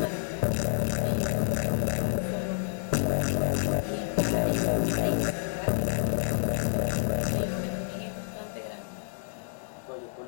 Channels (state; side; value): silent; right; digital silence